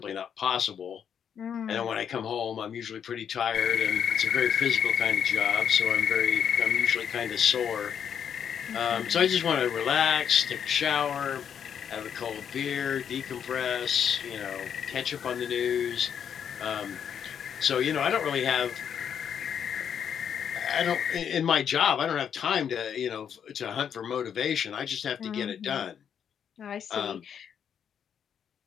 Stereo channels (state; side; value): quieter; right; 8.2 dB